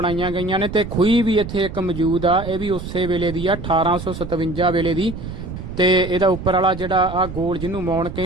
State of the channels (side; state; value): right; noise; rumble, 9 dB below the sound